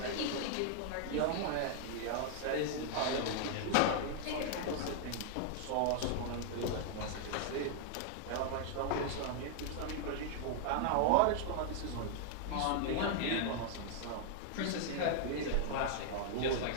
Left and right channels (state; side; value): different; both; correlation 0.00